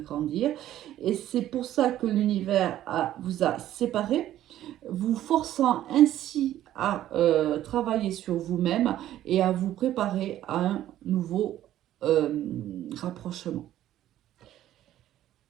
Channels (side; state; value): left; quieter; 12.8 dB